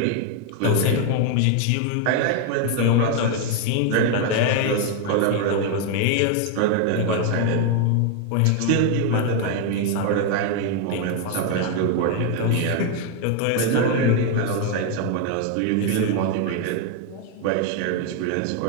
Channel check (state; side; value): different; both; correlation 0.01